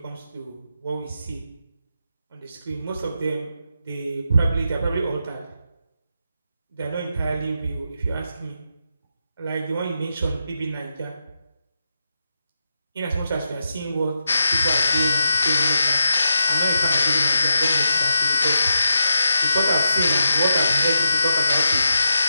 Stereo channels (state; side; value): inverted; both; correlation -0.84